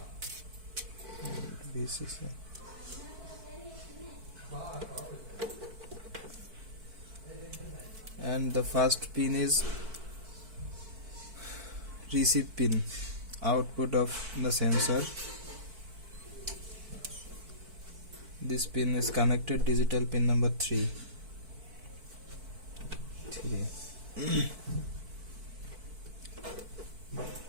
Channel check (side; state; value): left; late; 4.5 ms